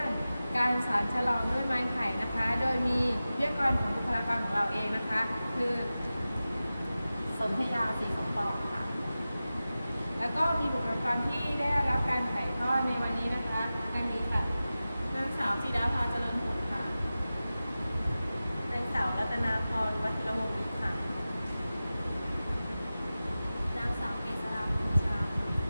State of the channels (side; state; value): both; inverted; correlation -0.95